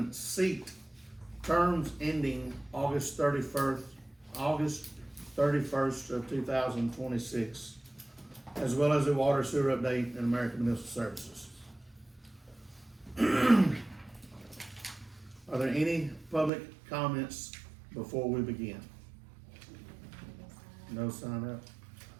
seat terms ending August 31st of 2026, as well as a water sewer update in American Municipal Services. Are there any public comments before we begin? No sign up?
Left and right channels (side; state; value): left; drops out; at 16.5 s